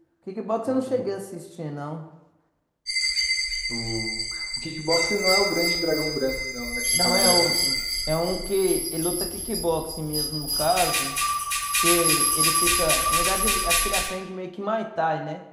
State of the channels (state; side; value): identical; both; correlation 1.00